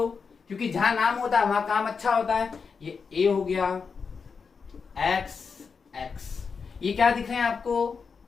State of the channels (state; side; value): quieter; right; 5.5 dB